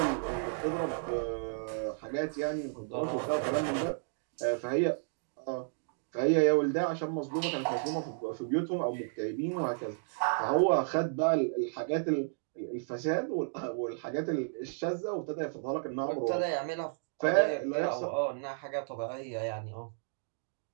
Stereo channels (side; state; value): left; silent; digital silence